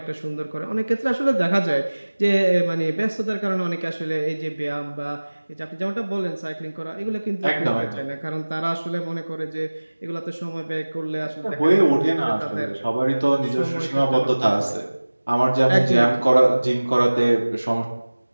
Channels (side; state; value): both; inverted; correlation -1.00